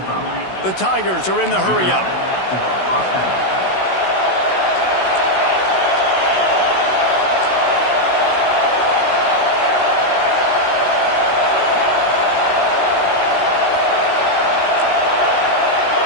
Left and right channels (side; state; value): right; late; 16 ms